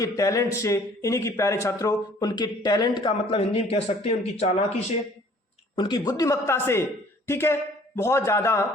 टैलेंट से, इन्हीं की प्यारे छात्रों उनके टैलेंट का मतलब हिंदी में कह सकते हैं उनकी चालाकी से, उनकी बुद्धिमत्ता से, ठीक है, बहुत ज्यादा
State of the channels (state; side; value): normal; both; correlation 0.55